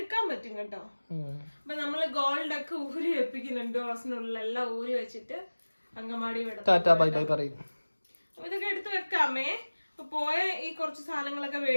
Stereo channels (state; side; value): inverted; both; correlation -1.00